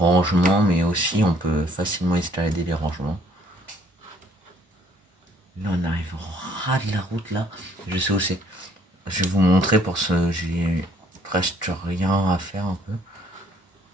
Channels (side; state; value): both; normal; correlation 0.62